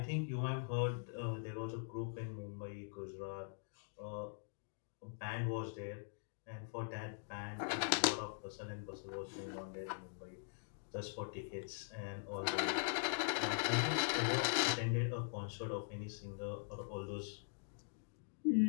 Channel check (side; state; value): right; silent; digital silence